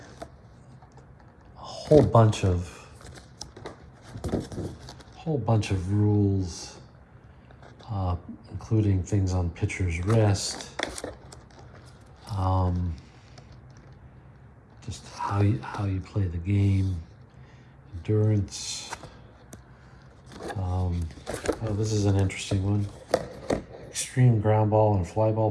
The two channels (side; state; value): both; identical; correlation 1.00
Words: whole bunch of rules, including things on pitcher's rest, just how you play the game, endurance. Oh, this is an interesting one. Extreme ground ball and fly ball